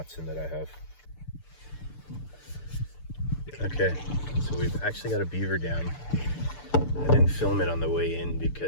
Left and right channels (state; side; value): late; right; 6.8 ms